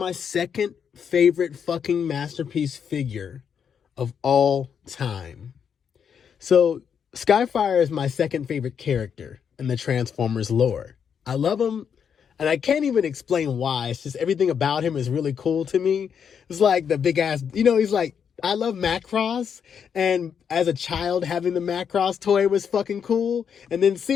second favorite fucking masterpiece figure of all time. So, Skyfire is my second favorite character in the Transformers lore. I love him, and I can't even explain why. It's just everything about him is really cool to me. It's like the big ass, he's like, I love Macross, and as a child, having the Macross toy was fucking cool. And then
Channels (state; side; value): quieter; right; 7.4 dB